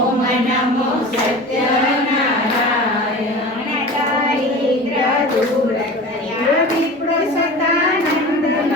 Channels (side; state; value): both; normal; correlation 0.35